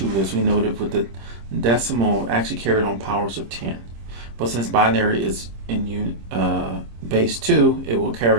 as we noted with the decimal actually carried on powers of 10. But since binary is in base 2, it will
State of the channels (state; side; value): late; left; 26 ms